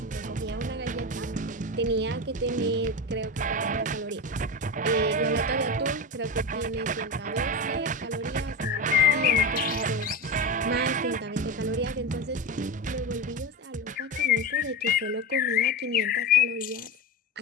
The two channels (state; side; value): normal; both; correlation 0.20